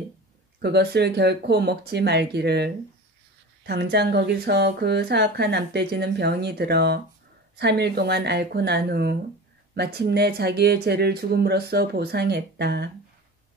그것을 결코 먹지 말기를. 당장 거기서 그 사악한 암돼지는 병이 들어 3일 동안 앓고 난 후 마침내 자기의 죄를 죽음으로써 보상했다.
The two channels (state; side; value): normal; both; correlation 0.34